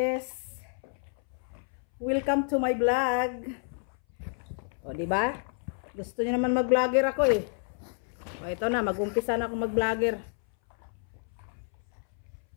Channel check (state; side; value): silent; right; 58 dB below the other